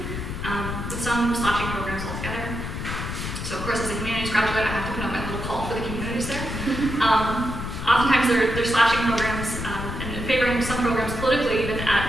with some slashing programs altogether. So of course, as a humanities graduate, I have to put out my little call for the communities there. Oftentimes they're slashing programs and favoring some programs politically even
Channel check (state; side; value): noise; left; rumble, 5 dB below the sound